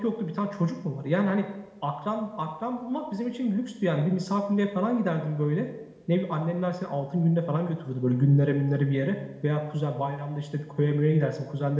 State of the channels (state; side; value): identical; both; correlation 1.00